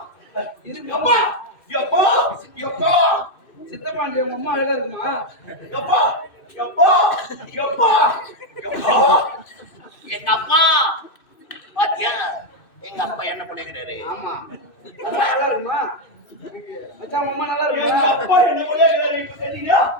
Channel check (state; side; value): late; right; 2.6 ms